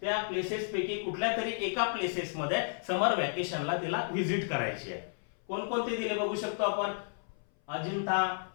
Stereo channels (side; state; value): right; silent; 56 dB below the other